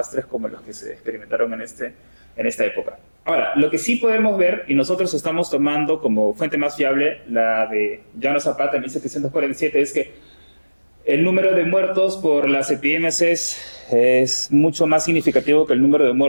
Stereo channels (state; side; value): inverted; both; correlation -1.00